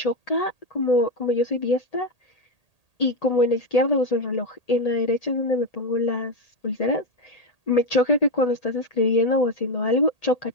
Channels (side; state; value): right; late; 1.8 ms